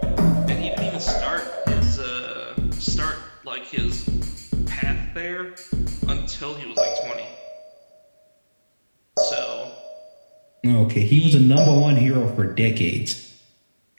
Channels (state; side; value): inverted; both; correlation -1.00